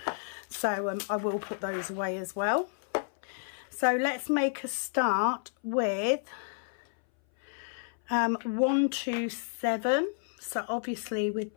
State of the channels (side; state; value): right; silent; 57 dB below the other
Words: So I will put those away as well. So let's make a start with 127. So obviously with